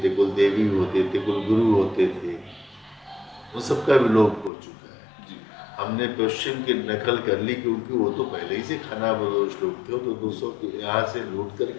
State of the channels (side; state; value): right; drops out; at 4.5 s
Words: थे, कुल देवी होते थे, कुल गुरु होते थे। वो सबका विलोप हो चुका है। हमने पश्चिम की नकल कर ली क्योंकि वो तो पहले ही से खाना बदोश लोग थे। तो 200 यहाँ से लूट